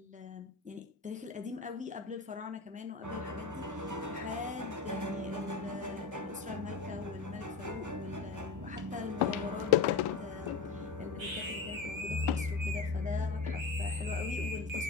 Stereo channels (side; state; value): right; quieter; 4.8 dB